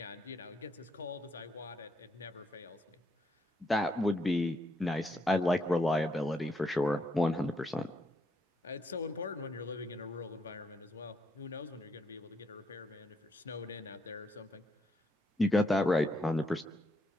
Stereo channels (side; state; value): both; normal; correlation 0.77